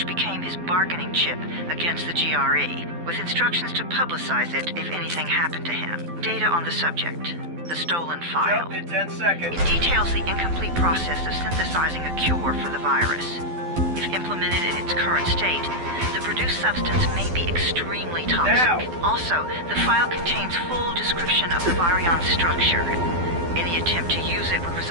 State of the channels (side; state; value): left; late; 12 ms